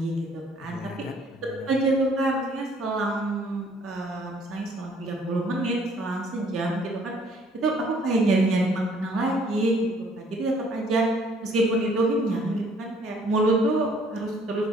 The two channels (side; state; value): both; normal; correlation 0.60